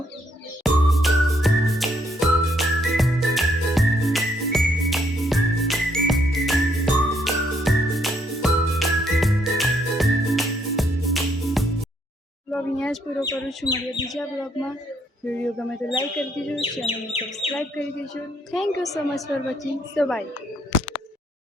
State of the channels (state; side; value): normal; both; correlation 0.71